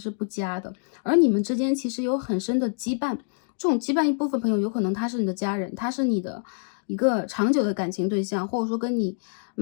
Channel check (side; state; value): right; silent; digital silence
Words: 不佳的，而你们之间其实有很深的羁绊。这种羁绊一部分朋友有可能他是你的家人，他是你的一个长久的感情对象，或者说跟你